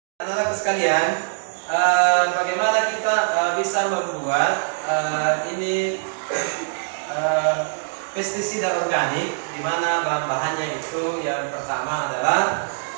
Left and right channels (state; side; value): silent; left; digital silence